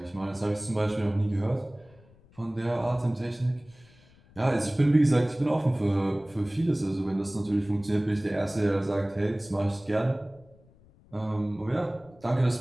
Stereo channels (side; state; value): left; noise; rumble, 27 dB below the sound